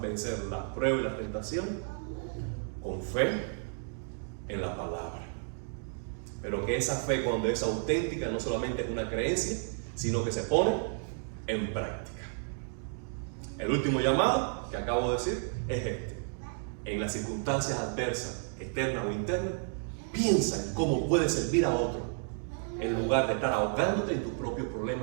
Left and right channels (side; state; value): left; silent; 56 dB below the other